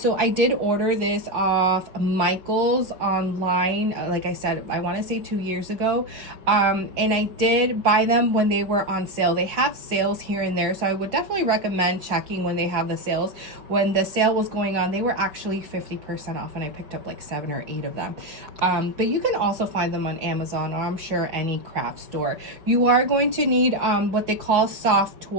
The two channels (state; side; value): late; left; 5.8 ms